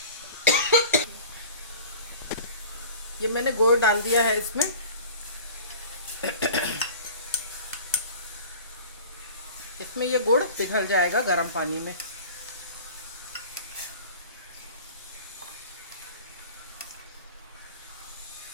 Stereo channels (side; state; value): both; inverted; correlation -0.40